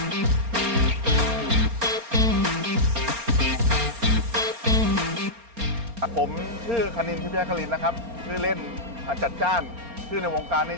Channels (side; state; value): left; late; 4.3 ms